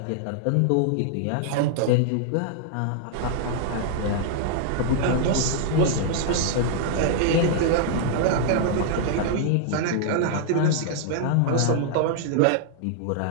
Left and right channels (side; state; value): both; different; correlation -0.01